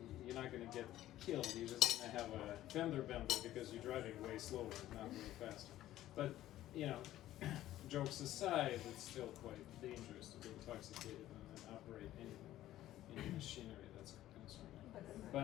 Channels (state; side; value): quieter; right; 14.0 dB